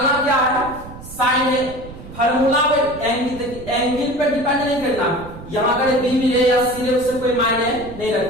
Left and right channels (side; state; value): right; noise; rumble, 15 dB below the sound